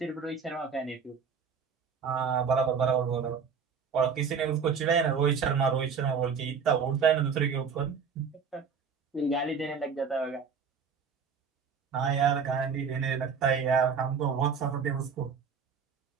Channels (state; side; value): quieter; left; 6.1 dB